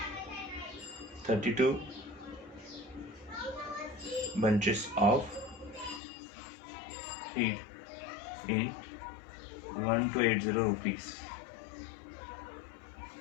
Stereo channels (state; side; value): drops out; right; at 6.0 s